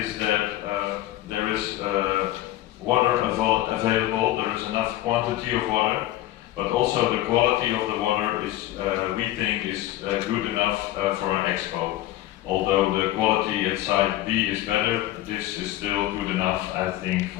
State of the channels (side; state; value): right; quieter; 15.0 dB